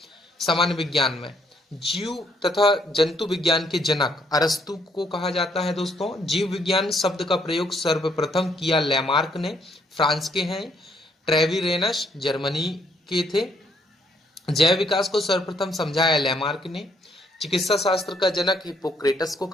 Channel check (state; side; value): normal; both; correlation 0.69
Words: सामान्य विज्ञान में जीव तथा जंतु विज्ञान के जनक अरस्तु को कहा जाता है। दोस्तों, जीव विज्ञान शब्द का प्रयोग सर्वप्रथम किया लैमार्क ने, फ्रांस के हैं। ट्रेविरेनस जर्मनी के थे। जैव विकास को सर्वप्रथम समझाया लैमार्क ने। चिकित्सा शास्त्र का जनक हिप्पोक्रेटस को